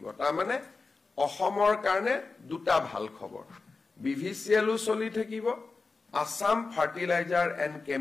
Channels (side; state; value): right; quieter; 4.1 dB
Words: তাৰ মানে অসমৰ কাৰণে দুটা ভাল খবৰ বিভিচিএলও চলি থাকিব আসাম ফাৰ্টিলাইজাৰ এণ্ড